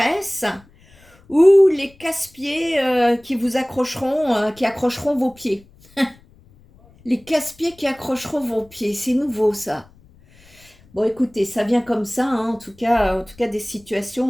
ou les casse-pieds qui vous accrocheront, qui accrocheront vos pieds. Les casse-pieds qui accrocheront vos pieds, c'est nouveau ça. Bon, écoutez, ça vient comme ça, hein, en tout cas des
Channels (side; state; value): left; noise; rumble, 28 dB below the sound